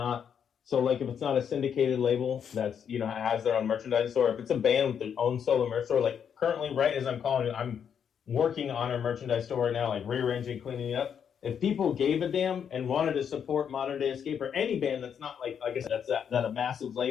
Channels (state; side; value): quieter; right; 7.9 dB